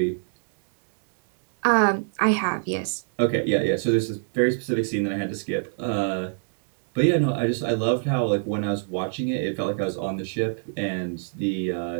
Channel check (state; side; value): silent; left; digital silence